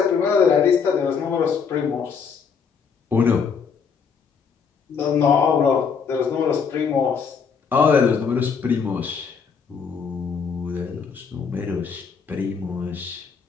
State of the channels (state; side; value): quieter; right; 6.1 dB